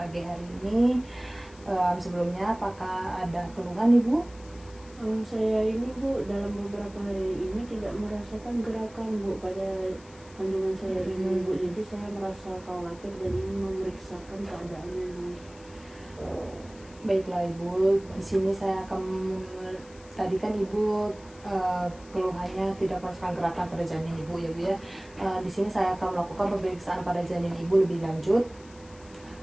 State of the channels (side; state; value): left; noise; hiss, 24 dB below the sound